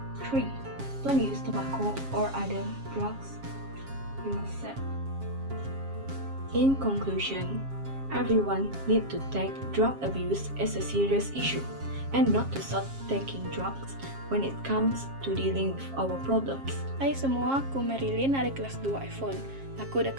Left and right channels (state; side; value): late; left; 7.4 ms